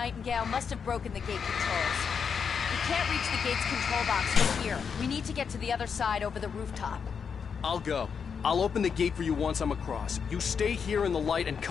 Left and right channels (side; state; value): right; quieter; 6.4 dB